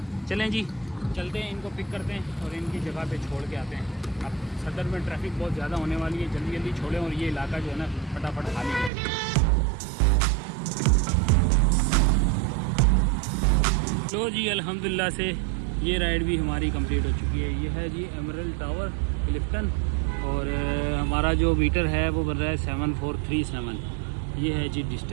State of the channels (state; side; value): drops out; left; at 8.9 s